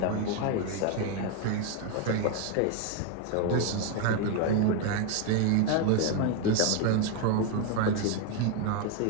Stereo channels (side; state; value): both; different; correlation 0.01